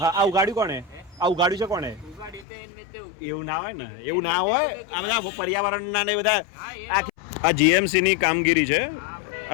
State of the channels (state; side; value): drops out; right; at 2.5 s